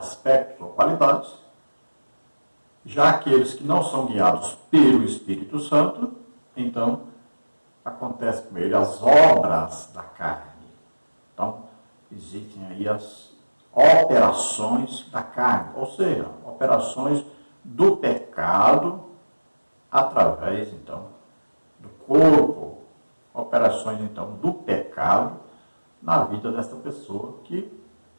ou qualidades, já aqueles que não são guiados pelo Espírito Santo, então acontece com ele as obras da carne. Então existem aí as operações da carne, ou seja, operações do pecado através, então, do corpo, operações, então, do pecado na vida desta pessoa que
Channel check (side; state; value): both; inverted; correlation -1.00